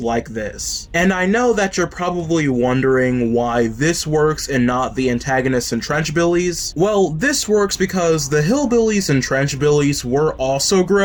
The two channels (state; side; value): identical; both; correlation 1.00